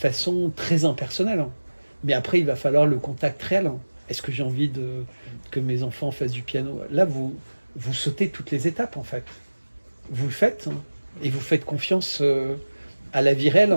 très impersonnelle. Mais après, il va falloir le contact réel. Est-ce que j'ai envie que mes enfants fassent du piano? Là, vous sautez toutes les étapes, en fait. Vous le faites, et vous faites confiance à la vie réelle.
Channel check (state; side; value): inverted; both; correlation -1.00